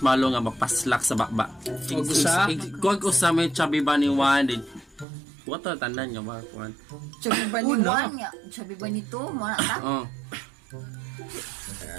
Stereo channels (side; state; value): left; drops out; at 5.1 s